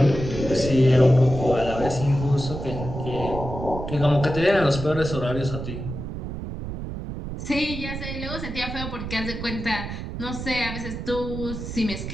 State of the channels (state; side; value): noise; right; rumble, 7 dB below the sound